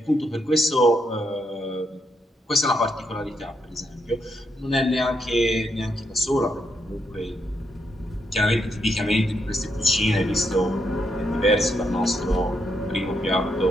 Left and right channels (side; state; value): both; normal; correlation 0.79